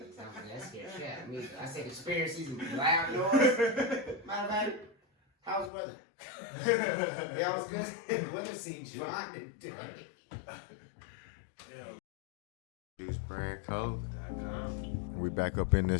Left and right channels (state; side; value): drops out; right; at 5.7 s